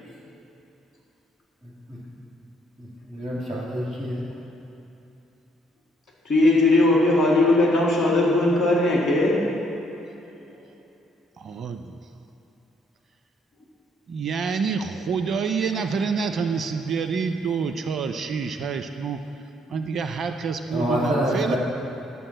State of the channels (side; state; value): both; normal; correlation 0.68